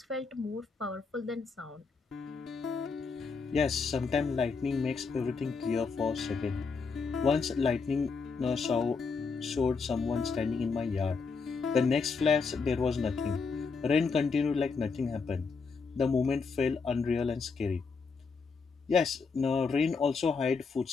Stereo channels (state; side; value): quieter; right; 4.9 dB